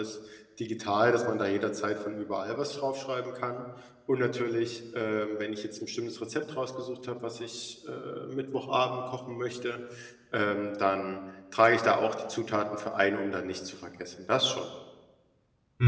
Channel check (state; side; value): identical; both; correlation 1.00